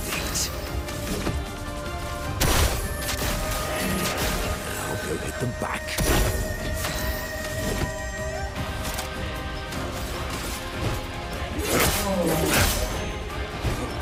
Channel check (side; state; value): both; identical; correlation 1.00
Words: Now go hit them back.